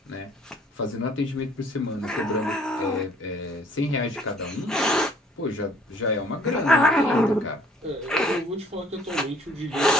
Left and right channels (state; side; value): normal; both; correlation 0.57